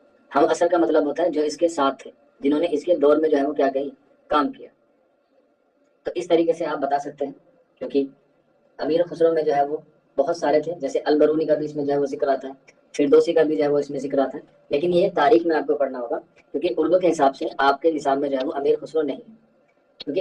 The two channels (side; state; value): both; identical; correlation 1.00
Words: ہم اصل کا مطلب ہوتا ہے جو اس کے ساتھ تھے، جنہوں نے اس کے دور میں جو ہے وہ کیا کہی، کام کیا. تو اس طریقے سے آپ بتا سکتے ہیں، کیونکہ امیر خسرو میں جو ہے وہ بہت سارے تھے، جیسے البرونی کا بھی اس میں جو ہے وہ ذکر آتا ہے، فردوسی کا بھی جو ہے وہ اس میں ذکر آتا ہے. لیکن یہ تاریخ میں آپ کو پڑھنا ہوگا، کیونکہ اردو کے حساب سے آپ کے نصاب میں جو ہے وہ امیر خسرو نہیں ہے. کیونکہ